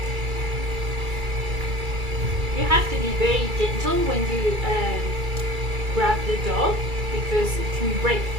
You have to be very gentle when you grab the dough because it can break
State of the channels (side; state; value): left; late; 2.3 ms